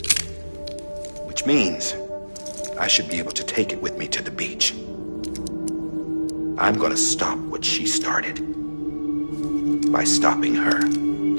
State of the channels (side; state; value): both; inverted; correlation -1.00